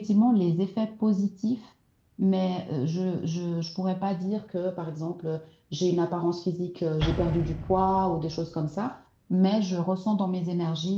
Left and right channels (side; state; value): both; identical; correlation 1.00